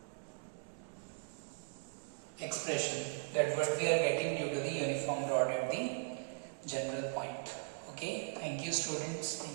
expression, that what we are getting due to the uniform rod at the general point. Okay, thank you students,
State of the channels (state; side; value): silent; left; digital silence